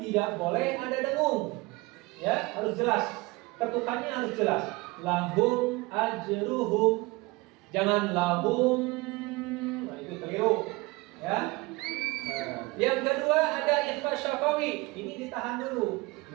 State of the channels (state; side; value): quieter; left; 23.3 dB